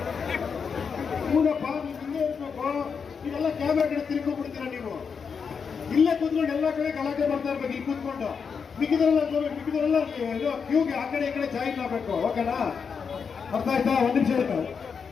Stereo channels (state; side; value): quieter; right; 6.1 dB